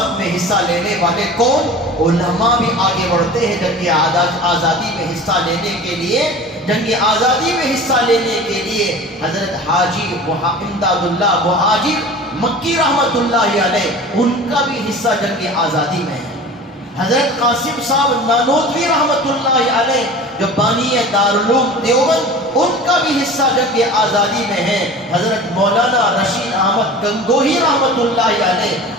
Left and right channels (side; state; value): both; normal; correlation 0.38